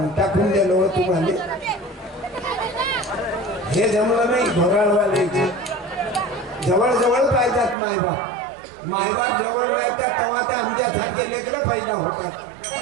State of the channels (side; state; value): left; drops out; at 7.8 s